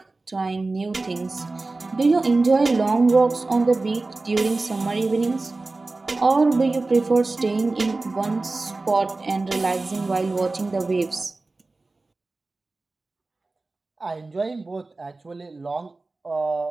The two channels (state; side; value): quieter; left; 3.4 dB